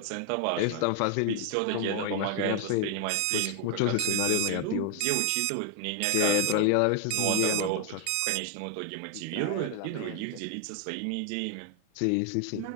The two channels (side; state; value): both; different; correlation 0.00